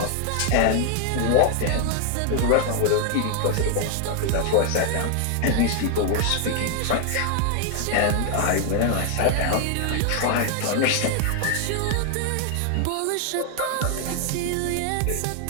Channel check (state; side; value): different; both; correlation 0.00